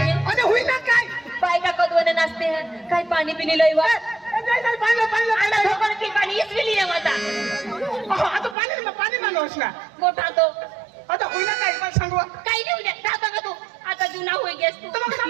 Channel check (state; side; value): drops out; left; at 8.6 s